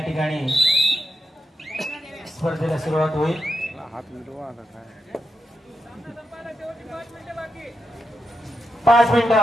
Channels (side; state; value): both; normal; correlation 0.85